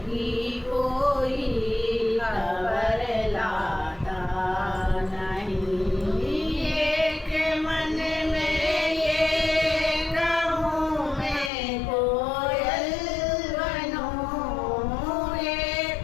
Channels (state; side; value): drops out; right; at 11.5 s